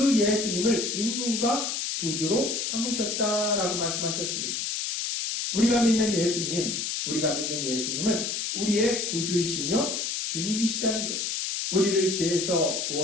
예수님을 임금과 구주로 삼으셨다라고 말씀하셨습니다. 우리가 믿는 예수님은 우리의 구주이시며 주님이시다는 거예요. 우리를 죄에서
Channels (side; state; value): left; noise; hiss, 2 dB below the sound